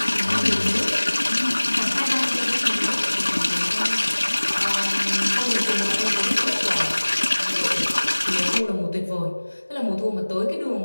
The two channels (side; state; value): both; inverted; correlation -1.00